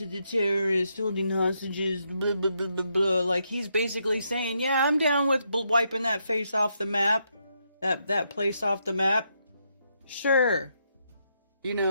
the terrorists holding hostages, blah, blah, blah, blah, blah. Like, he's basically saying, yeah, I'm down with wiping that face off the map, that place off the map. Sure. You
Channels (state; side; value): inverted; both; correlation -0.78